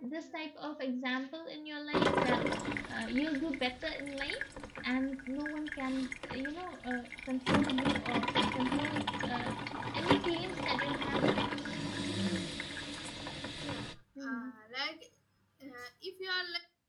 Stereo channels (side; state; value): both; identical; correlation 1.00